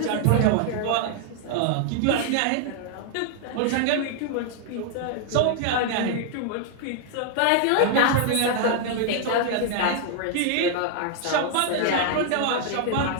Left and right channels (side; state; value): both; different; correlation 0.00